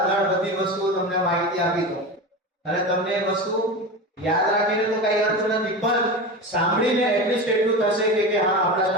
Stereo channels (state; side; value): normal; both; correlation 0.25